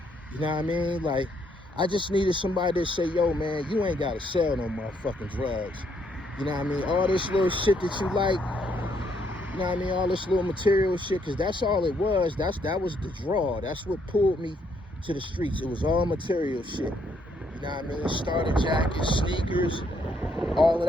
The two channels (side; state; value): both; normal; correlation 0.72